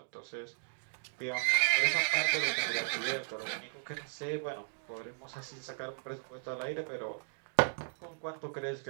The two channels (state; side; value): silent; left; digital silence